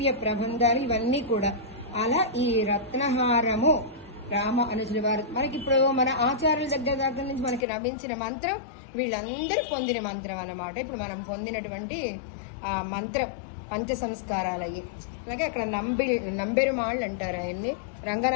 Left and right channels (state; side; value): drops out; right; at 7.7 s